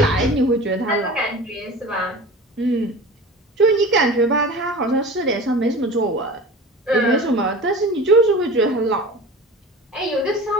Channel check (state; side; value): normal; both; correlation 0.35